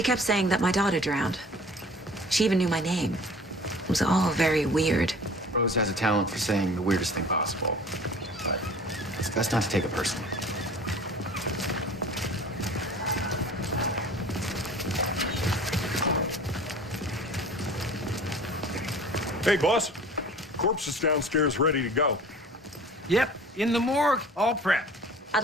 kept saying that my daughter drowned. She even knew my name. It was all very weird. Rose has a talent for saying the weirdest thing possible. But it's best not to take it personally. Hey, boss. Corpse is downstairs ready to go. Yep, in the morgue, all prepped. I'd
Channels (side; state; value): both; normal; correlation 0.45